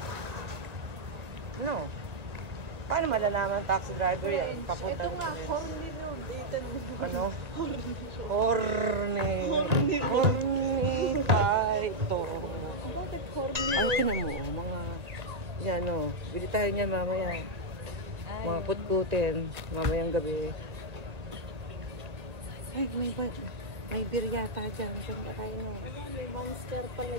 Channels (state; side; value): late; left; 1.9 ms